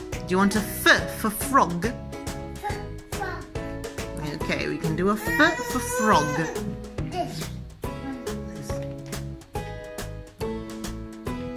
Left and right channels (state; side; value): identical; both; correlation 1.00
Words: Do you want a F for frog? From Okay, we can do a F for frog. this.